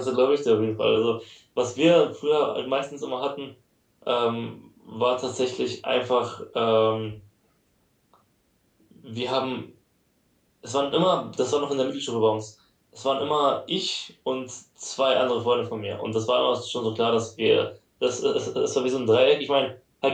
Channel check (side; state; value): both; identical; correlation 1.00